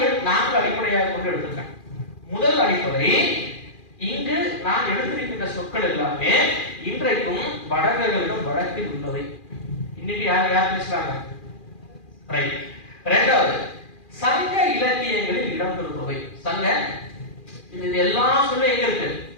4 அடிப்படையாக கொண்டு எடுத்திருக்கேன். முதல் அடிப்படை, இங்கு நான் எடுத்திருக்கின்ற சொற்கள் எல்லாமே இன்றைக்கும் வடகர்களிடம் வழக்கில் உள்ளவை. இன்னைக்கு யார் பேசுறாங்க? ரைட். இரண்டாவது, சங்க இலக்கியங்களில் இடம்பெறுபவை. சங்க இது எல்லாம் சொல்ல எங்க இருக்கு?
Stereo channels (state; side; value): late; right; 2.4 ms